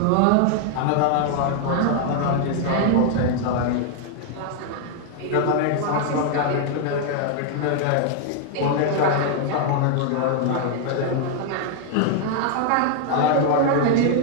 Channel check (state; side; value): different; both; correlation 0.00